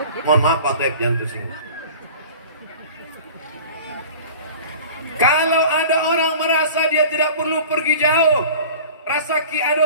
Mohon maaf Pak Toib, jangan tersinggung. Kalau ada orang merasa dia tidak perlu pergi jauh, rasa ki ada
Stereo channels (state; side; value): inverted; both; correlation -0.42